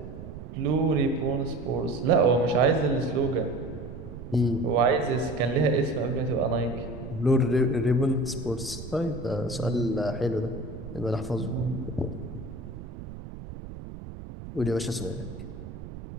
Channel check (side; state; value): right; noise; rumble, 12 dB below the sound